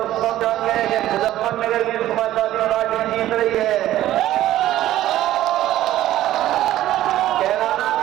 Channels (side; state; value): left; quieter; 13.8 dB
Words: सब जान गए कि मुजफ्फरनगर की समाजवादी पार्टी जीत रही है, कैराना